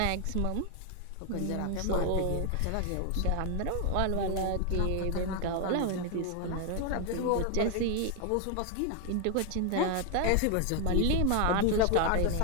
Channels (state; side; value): different; both; correlation 0.01